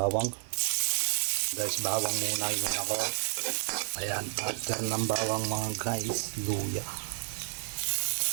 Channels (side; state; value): left; silent; 57 dB below the other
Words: Guys, bawang muna yun ako. Ayan, after ng bawang mga guys, luya.